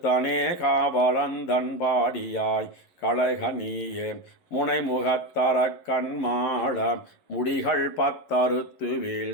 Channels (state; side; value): late; right; 11 ms